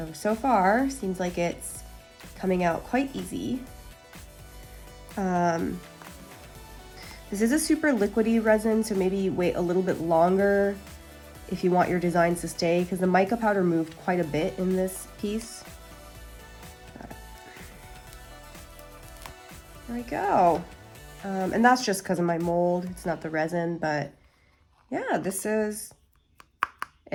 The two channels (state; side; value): identical; both; correlation 1.00